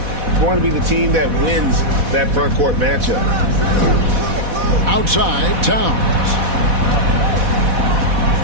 going to be the team that wins that front court matchup. Outside, Towns.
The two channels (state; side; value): late; left; 4.1 ms